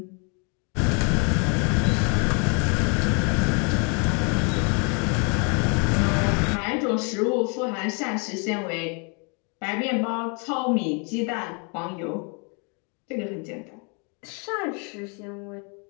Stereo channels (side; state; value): right; quieter; 35.4 dB